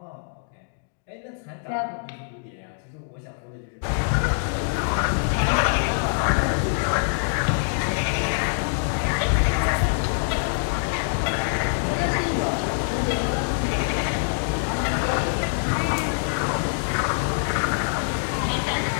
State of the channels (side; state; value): right; silent; digital silence